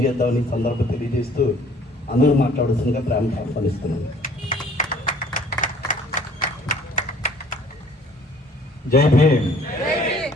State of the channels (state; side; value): normal; both; correlation 0.55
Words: సందర్భం తెలియజేస్తూ అందరూ మాట్లాడాల్సిందిగా ప్రేమతో ఆహ్వానిస్తున్నాను. జై భీమ్.